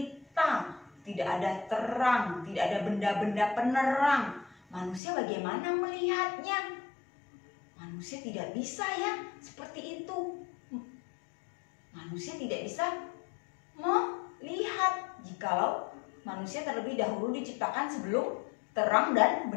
tidak ada terang, tidak ada benda-benda penerang. Manusia bagaimana melihatnya? Manusia tidak bisa ya seperti itu. Manusia tidak bisa melihat jikalau manusia terlebih dahulu diciptakan sebelum terang dan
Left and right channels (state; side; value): drops out; right; at 5.0 s